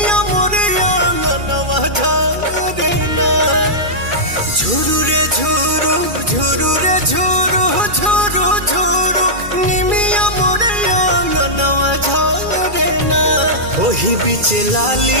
मोरे आंगनवा झारे ना। झुरु रे झुरु झुरु रे झुरु झुरु झुरु निमिया मोरे आंगनवा झारे ना। ओही बीचे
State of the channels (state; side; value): late; left; 2.4 ms